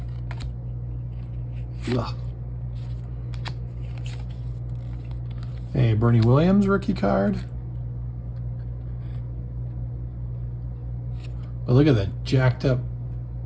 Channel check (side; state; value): both; identical; correlation 1.00